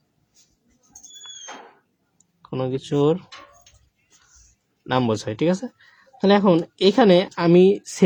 কোনো কিছুর নাম বোঝায়, ঠিক আছে? তাহলে এখন এখানে আমি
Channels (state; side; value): identical; both; correlation 1.00